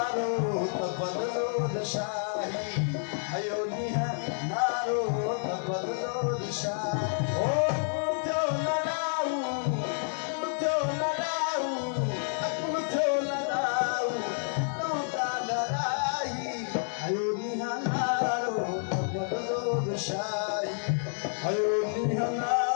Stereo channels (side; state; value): right; silent; 58 dB below the other